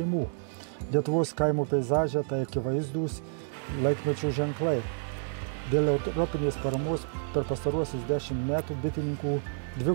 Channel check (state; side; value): silent; left; digital silence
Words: Lietuvos kaimo peizaže tai akivaizdūs laikmečio ženklai. Dėl europinės paramos per pastaruosius 10 metų bitininkų